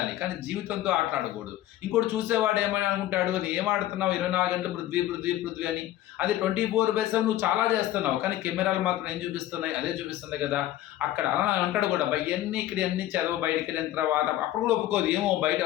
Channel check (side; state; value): right; quieter; 14.0 dB